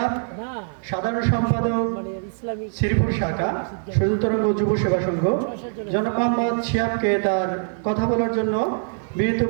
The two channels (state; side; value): silent; left; 63 dB below the other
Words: সাধারণ সম্পাদক শ্রীপুর শাখা সজল তরঙ্গ যুব সেবা সংঘ। জনাব মোহাম্মদ শিহাবকে তার কথা বলার জন্য